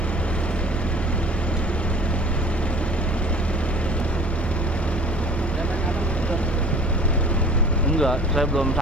Enggak, saya belum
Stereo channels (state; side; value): noise; right; hum, 13 dB below the sound